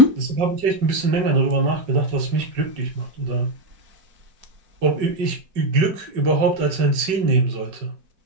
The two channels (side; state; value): left; late; 5.3 ms